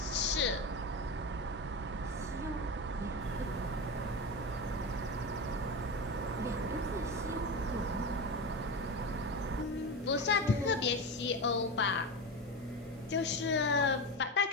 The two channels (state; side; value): normal; both; correlation 0.21